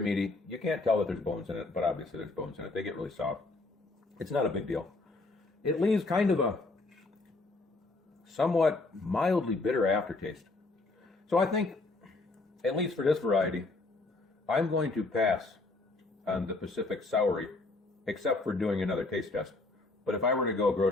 You can't tell that there's bones in it, but obviously there's bones in it. They get really soft. It's not a big deal. It leaves kind of a somewhat mildly bitter aftertaste. So I think, at least for this variety, I'm going to pass on the Pacific Saury, except for doing another taste test. But if I were to go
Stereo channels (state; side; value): quieter; right; 3.3 dB